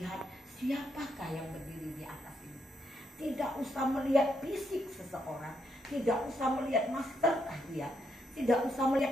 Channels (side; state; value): both; normal; correlation 0.78